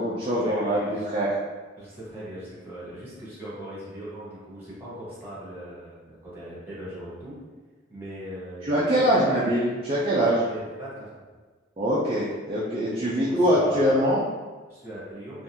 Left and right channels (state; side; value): normal; both; correlation 0.41